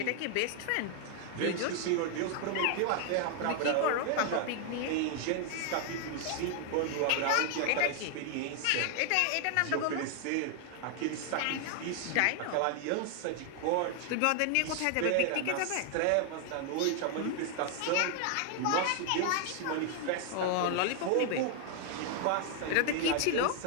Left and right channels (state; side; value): different; both; correlation 0.00